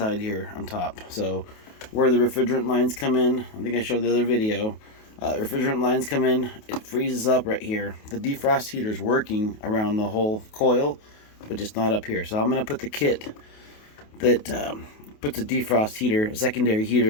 here on top. So where the refrigerant lines come in, I think I showed the other video, refrigerant lines come in, it freezes up right here. The defrost heater is working around the whole coil, but just not up here. So I'm going to put the kit that puts a defrost heater, a secondary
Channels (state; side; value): late; right; 28 ms